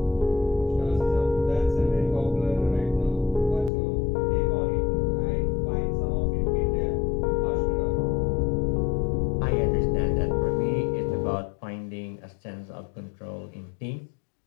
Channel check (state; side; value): drops out; right; at 3.7 s